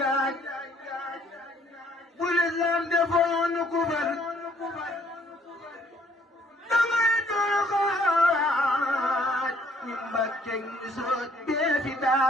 bu lislaam defoon ku far dangay dooxaaj ñu Mbàkke ngi soot bee fi daa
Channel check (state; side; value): normal; both; correlation 0.63